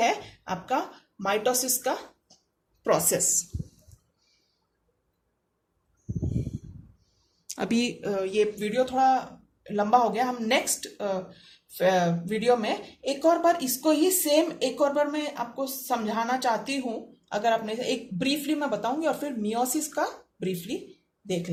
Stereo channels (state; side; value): identical; both; correlation 1.00